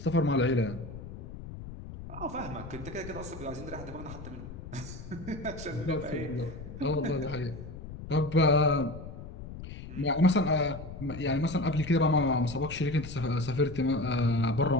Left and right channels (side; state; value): left; noise; rumble, 12 dB below the sound